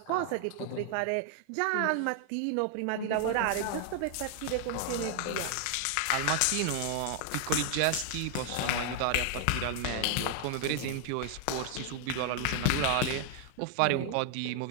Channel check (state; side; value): different; both; correlation 0.00